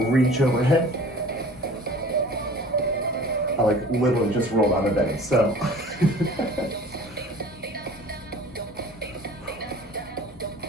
reach overhead. I like literally just rolled out of bed, so.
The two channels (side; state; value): both; normal; correlation 0.45